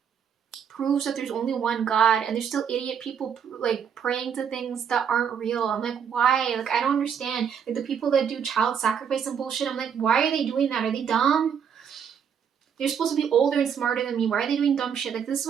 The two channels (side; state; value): left; quieter; 7.7 dB